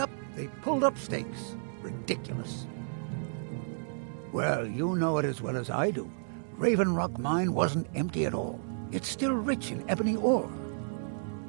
they pulled up stakes. Ridiculous. Well, you know it as well as I do. Raven Rock Mine wasn't empty at all. It's still rich in ebony ore.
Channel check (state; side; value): silent; left; 56 dB below the other